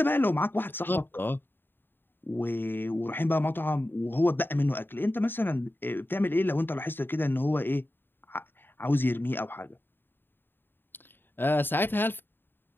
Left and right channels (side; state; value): right; late; 0.097 ms